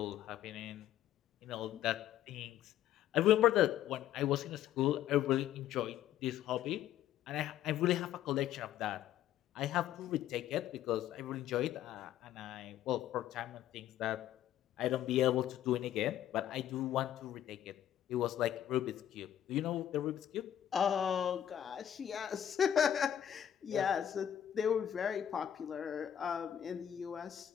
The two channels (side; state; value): right; quieter; 11.0 dB